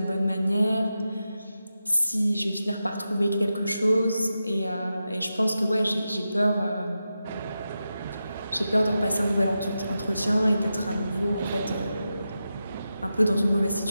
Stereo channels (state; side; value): inverted; both; correlation -0.90